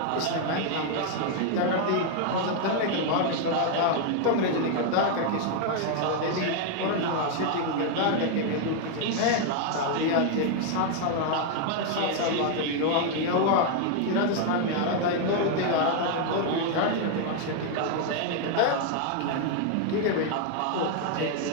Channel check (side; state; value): both; different; correlation 0.00